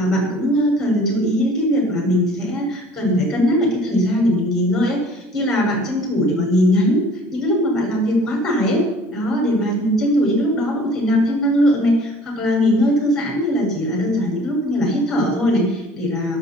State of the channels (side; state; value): both; normal; correlation 0.51